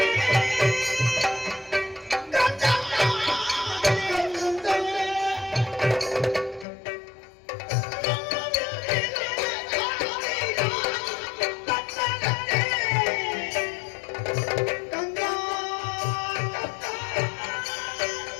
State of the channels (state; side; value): drops out; right; at 6.7 s